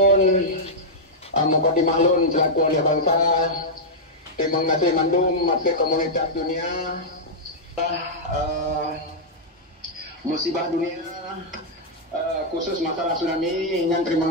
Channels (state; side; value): normal; both; correlation -0.07